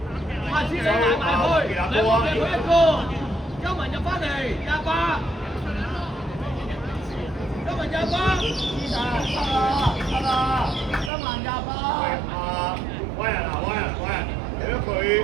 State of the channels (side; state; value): left; drops out; at 11.1 s